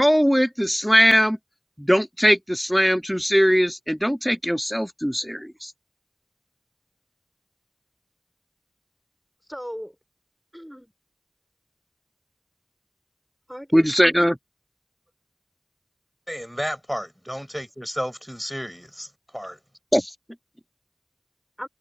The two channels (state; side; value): identical; both; correlation 1.00